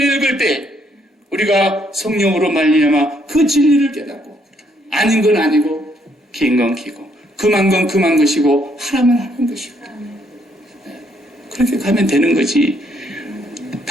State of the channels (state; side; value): normal; both; correlation 0.71